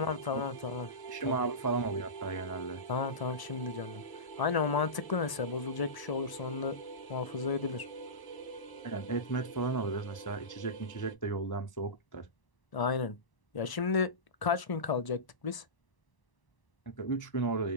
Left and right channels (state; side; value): late; right; 1.0 ms